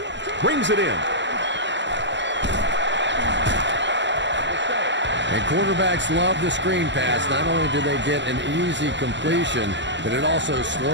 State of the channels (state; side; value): late; left; 0.53 ms